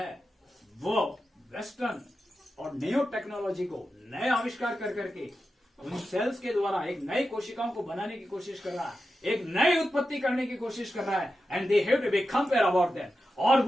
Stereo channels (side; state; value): both; normal; correlation 0.90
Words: वो वेस्टर्न और न्यू टेक्नोलॉजी को नए आविष्कार कर करके उन सेल्स के द्वारा एक नई कोशिकाओं को बनाने की कोशिश कर रहा है, एक नई उत्पत्ति करने की कोशिश कर रहा है, and they have to be compare about that, और